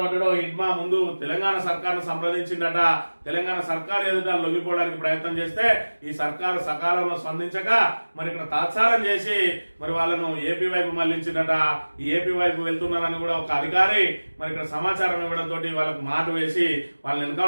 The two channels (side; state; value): both; inverted; correlation -1.00